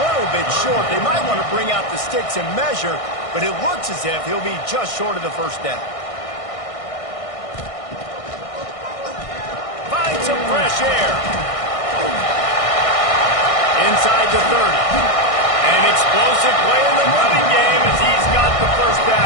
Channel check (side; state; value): right; late; 1.6 ms